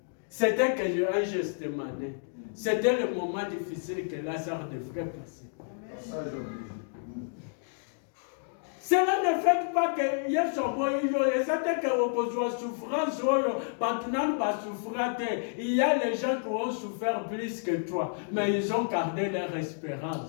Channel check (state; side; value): silent; right; digital silence